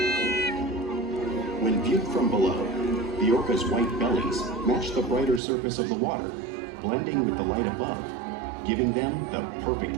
When viewed from below, the orca's white bellies match the brighter surface of the water, blending with the light above, giving them the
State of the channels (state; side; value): drops out; left; at 5.4 s